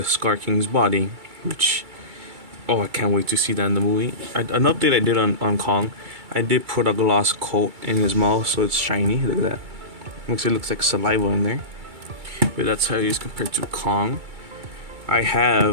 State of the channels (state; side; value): late; left; 2.3 ms